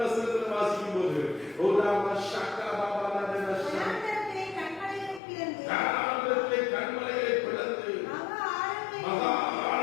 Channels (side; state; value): right; drops out; at 5.2 s